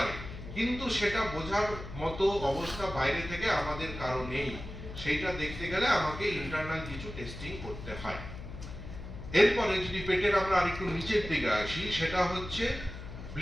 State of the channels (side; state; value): left; noise; hum, 11 dB below the sound